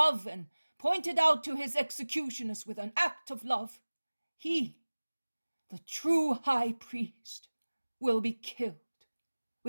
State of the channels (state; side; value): inverted; both; correlation -1.00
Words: and pointed out to his executioners with an act of love, he, the true high priest, will be killed